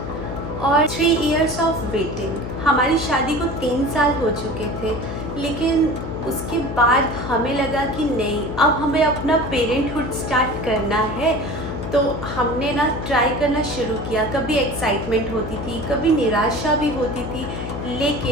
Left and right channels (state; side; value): noise; left; hum, 6 dB below the sound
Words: और 3 इयर्स ऑफ वेटिंग, हमारी शादी को 3 साल हो चुके थे, लेकिन उसके बाद हमें लगा कि नहीं, अब हमें अपना पेरेंटहुड स्टार्ट करना है। तो हमने ना ट्राई करना शुरू किया। कभी एक्साइटमेंट होती थी, कभी निराशा भी होती थी,